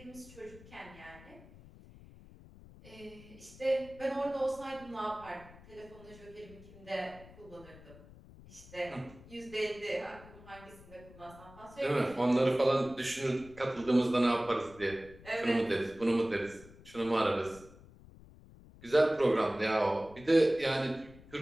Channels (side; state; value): left; noise; rumble, 20 dB below the sound